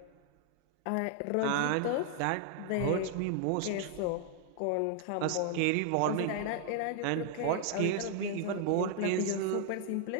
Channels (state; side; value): different; both; correlation 0.00